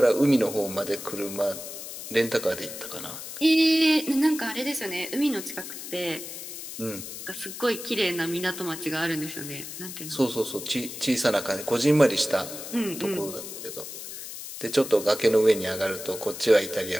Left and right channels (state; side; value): noise; left; hiss, 10 dB below the sound